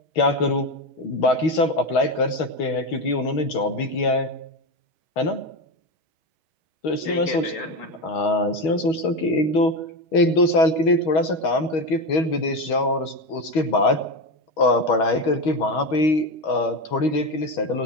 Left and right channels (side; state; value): right; late; 6.3 ms